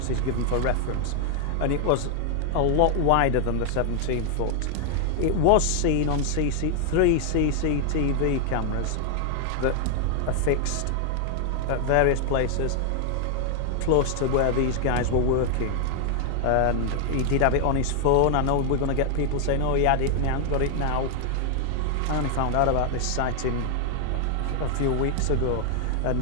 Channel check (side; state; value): both; different; correlation 0.00